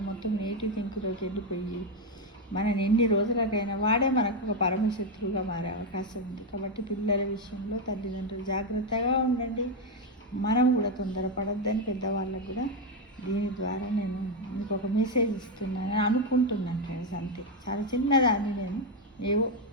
మొత్తం నెగిటివ్ థింక్లోకి వెళ్ళిపోయి మనని ఎన్ని రోజులకైనా వాడే మనకు ఒక పరమశత్రువుగా మారే అవకాశం ఉంది. కాబట్టి పిల్లల విషయంలో తల్లిదండ్రులు జాగ్రత్తగా ఉండండి. మనం కూడా తొందరపడొద్దని పెద్దవాళ్ళకు కూడా దీని ద్వారా నేను మీకు ఒక మెసేజ్ ఇస్తున్నాను అనుకుంటున్నాను ఫ్రెండ్స్. అంతే, చాలా చిన్నదాన్ని నేను ఏవో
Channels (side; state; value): both; normal; correlation 0.06